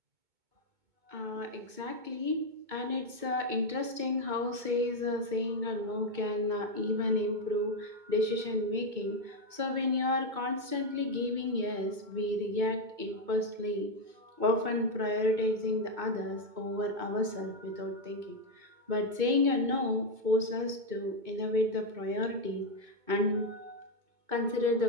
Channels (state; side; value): late; left; 2.2 ms